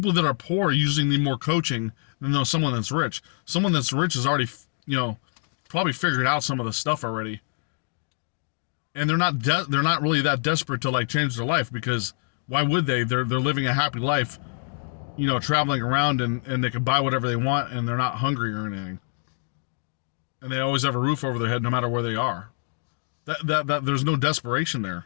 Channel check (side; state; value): right; silent; digital silence